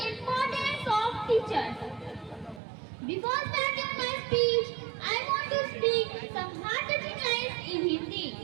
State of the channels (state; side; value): drops out; left; at 2.6 s